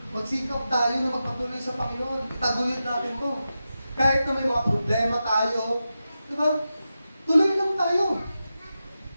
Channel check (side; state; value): both; inverted; correlation -0.91